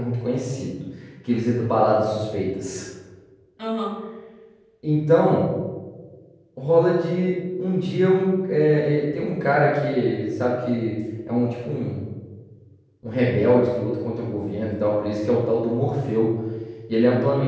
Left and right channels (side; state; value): both; identical; correlation 1.00